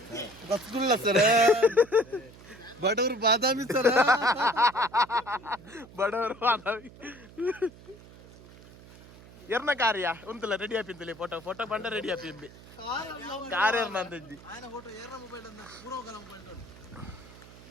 ರಸಗುಲ್ಲ ಸರ್ ಬಡವರು ಬಾದಾಮಿ ಸರ್ ಬಡವರು ಬಾದಾಮಿ ಎರ್ನ ಕಾರ್ಯ ಉಂತಲ್ಲ ರೆಡಿ ಆಪಿಂತಲಿ ಫೋಟೋ ಬಂಡ ರೆಡಿ ಆಪಿಂಬಿ ಕಾರ್ ಎರ್ನ ಅಂದಿ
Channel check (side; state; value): right; noise; hum, 20 dB below the sound